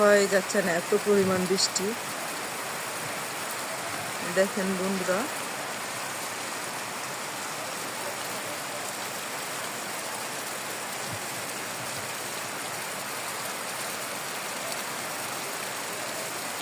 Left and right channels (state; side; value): identical; both; correlation 1.00